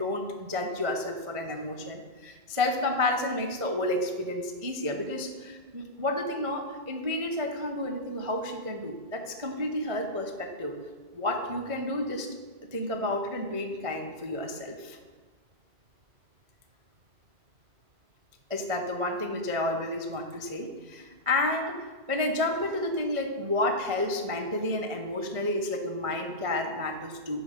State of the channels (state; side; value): late; left; 1.6 ms